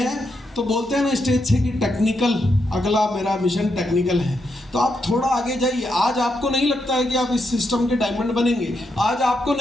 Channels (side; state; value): both; normal; correlation 0.82